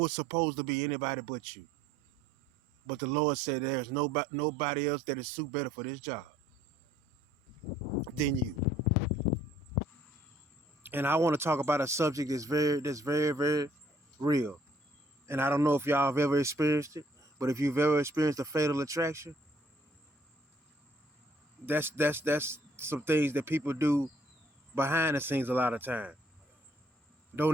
supposed to be anybody but you. But the Lord said there's nobody else that is suit better for this job than you. And I want to talk about a subject that's very, very real. And I don't know if y'all have ever experienced it, but if you've ever experienced a fatal attraction, that's some things that people do behind the scenes a lot of time.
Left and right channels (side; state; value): both; normal; correlation 0.61